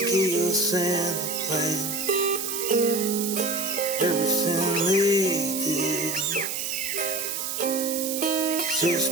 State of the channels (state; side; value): noise; right; hiss, 3 dB below the sound